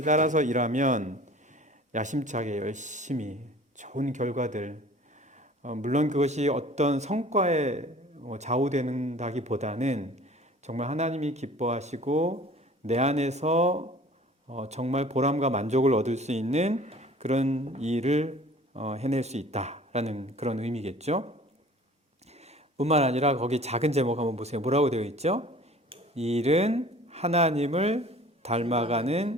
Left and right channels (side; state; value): both; normal; correlation 0.47